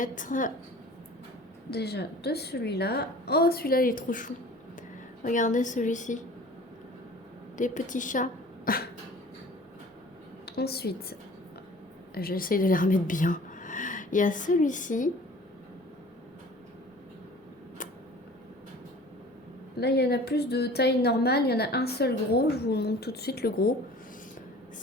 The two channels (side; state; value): both; normal; correlation 0.45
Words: déjà de celui-là. Oh, celui-là, il est trop chou. Regardez celui-ci. Des petits chats. Ensuite, j'essaye de les remettre bien. Il y a celui-ci. Là, il y en a plus de taille normale. Il y en a un seul gros. Je vous montre tout de suite le gros.